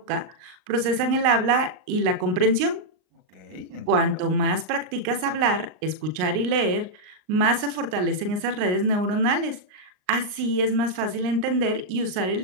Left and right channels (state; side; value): late; left; 38 ms